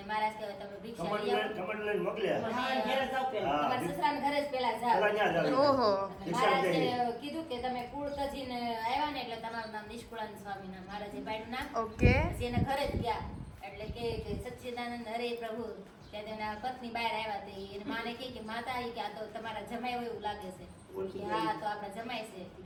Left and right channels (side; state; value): both; identical; correlation 1.00